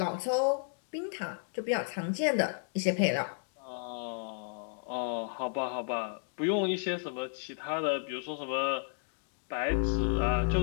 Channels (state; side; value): silent; right; digital silence